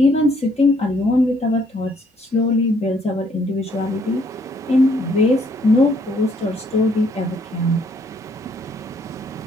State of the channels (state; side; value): normal; both; correlation 0.67